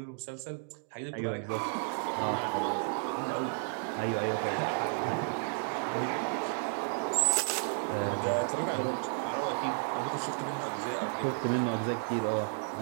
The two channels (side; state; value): left; silent; 56 dB below the other